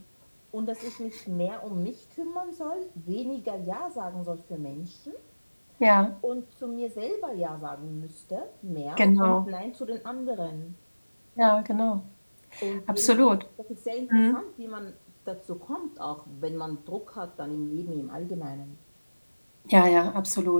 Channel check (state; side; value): inverted; both; correlation -1.00